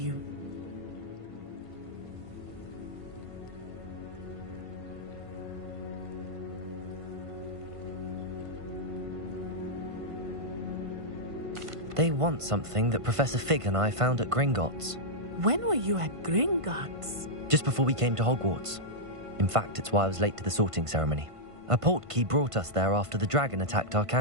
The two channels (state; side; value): late; left; 1.5 ms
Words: They want something that Professor Fig and I found at Gringotts. When were you at Gringotts? Just before we came to Hogwarts. In fact, it's why I was late to the sorting ceremony. A portkey brought us there after the dragon attacked our